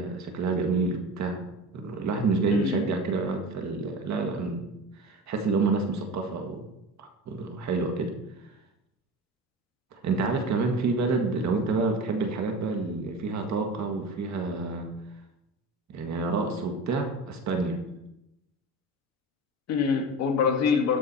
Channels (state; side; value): normal; both; correlation 0.31